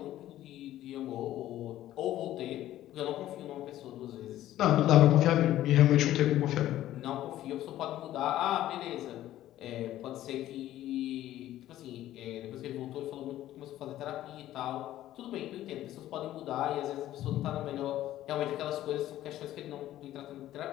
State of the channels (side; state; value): right; quieter; 13.6 dB